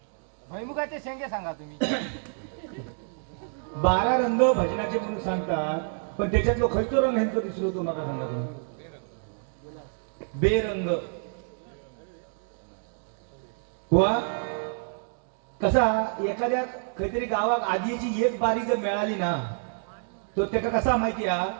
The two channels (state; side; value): silent; left; 59 dB below the other